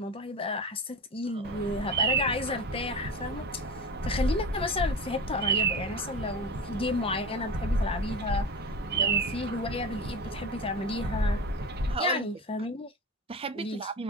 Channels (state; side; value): normal; both; correlation 0.28